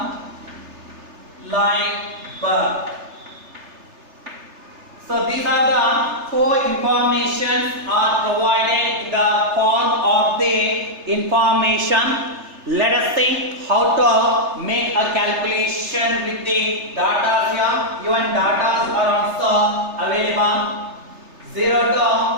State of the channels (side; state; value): left; late; 3.3 ms